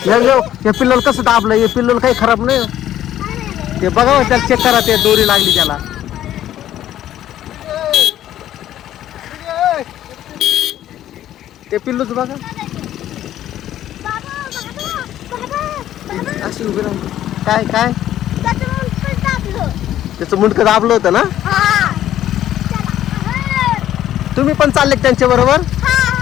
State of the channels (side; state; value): right; quieter; 12.1 dB